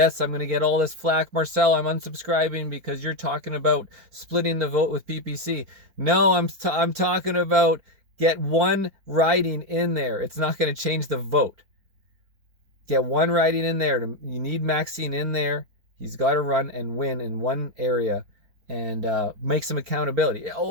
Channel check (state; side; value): late; left; 4.4 ms